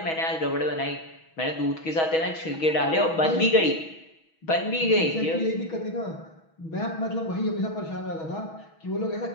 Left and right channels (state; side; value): late; right; 6.2 ms